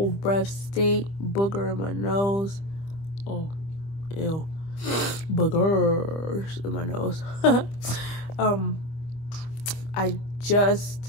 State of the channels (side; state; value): right; late; 25 ms